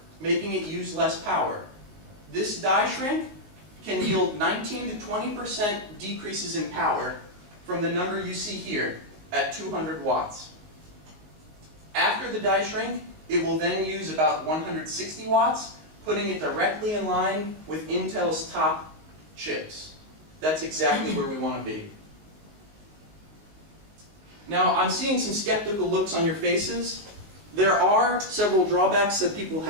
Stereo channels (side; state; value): left; late; 19 ms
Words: making it use less power. This die shrink can yield 19 to 20% decreases in power from the number you see here at 200 watts. After the die shrink, it will then use about 160 watts, putting it directly in line with Intel's top chips. That's exactly where we want to be. Now, I'm seeing some skeptical looks on your faces. There are several drawbacks that people